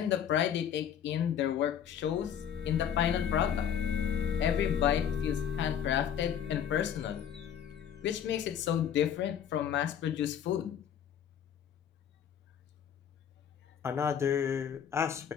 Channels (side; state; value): right; quieter; 8.8 dB